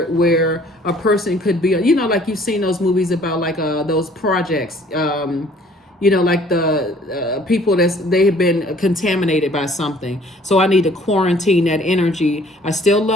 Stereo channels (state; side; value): normal; both; correlation 0.56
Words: a person could be, like you've seen those movies about like those projects, like the people they have been contaminated by something. So I need to quarantine that energy. I still